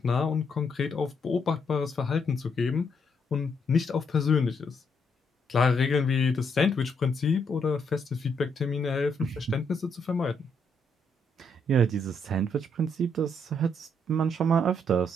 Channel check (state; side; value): normal; both; correlation 0.74